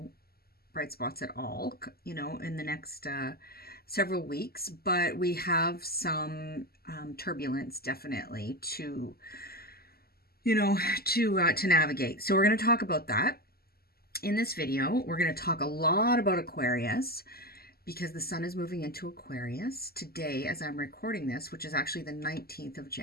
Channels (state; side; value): late; right; 0.45 ms